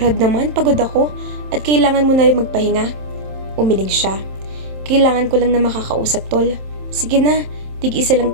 naman, pagod ako at kailangan mo na rin magpahinga. Umiling siya. Kailangan ko lang na makakausap, Tol. Sige na, tig-isa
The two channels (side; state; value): left; late; 27 ms